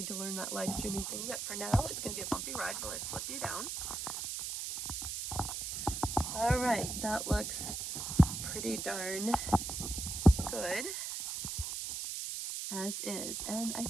to learn that live streaming thing, but for now, it's going to be a bumpy ride while I flip you down. All right, that looks pretty darn good. As is, and I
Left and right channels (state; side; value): noise; right; hiss, 4 dB below the sound